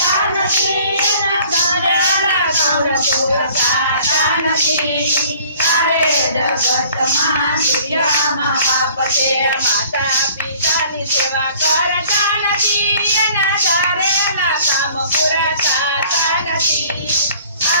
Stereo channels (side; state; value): both; inverted; correlation -0.53